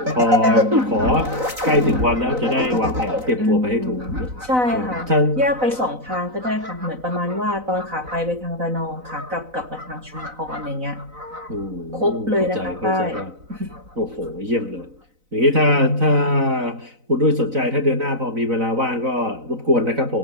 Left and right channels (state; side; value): late; left; 4.0 ms